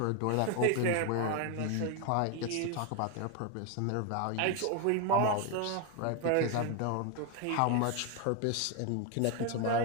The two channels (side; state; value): both; different; correlation 0.01